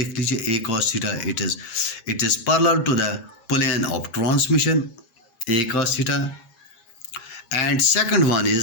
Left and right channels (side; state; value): right; late; 8.5 ms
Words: लीजिए, A cos theta it is parallel to the plane of transmission, A cos theta. And second one